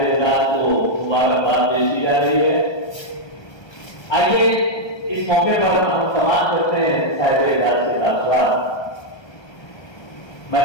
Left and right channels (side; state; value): right; late; 1.3 ms